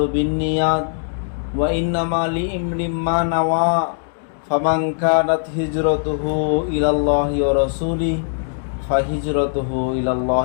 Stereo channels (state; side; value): silent; right; digital silence